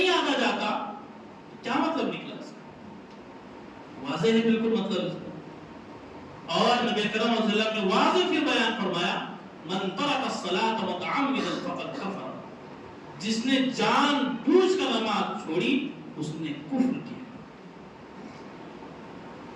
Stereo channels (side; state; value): both; identical; correlation 1.00